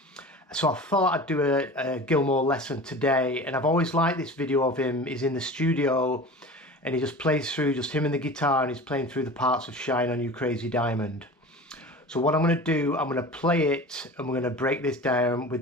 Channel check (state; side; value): normal; both; correlation 0.36